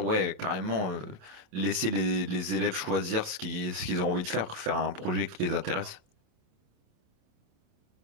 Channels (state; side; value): late; left; 28 ms